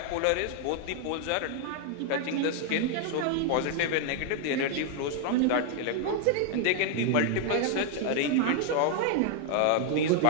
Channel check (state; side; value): different; both; correlation 0.00